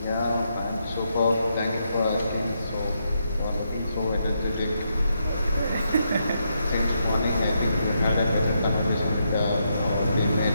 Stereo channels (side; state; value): both; inverted; correlation -0.80